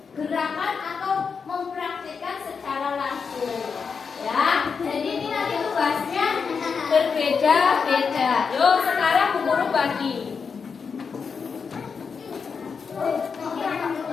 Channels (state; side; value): quieter; right; 5.7 dB